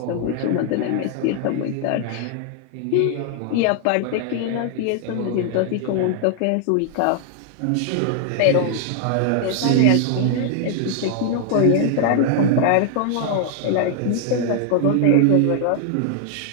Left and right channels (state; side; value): different; both; correlation 0.00